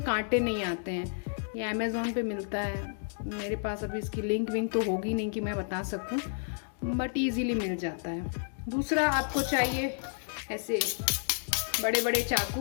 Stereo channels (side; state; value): right; silent; digital silence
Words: कांटे नहीं आते हैं। ये अमेज़ॉन पे मिलता है, मेरे पास अभी इसकी लिंक तो होगी नहीं कि मैं बता सकूं, बट ईजीली मिल जाता है। दूसरा आपको चाहिए ऐसे बड़े बड़े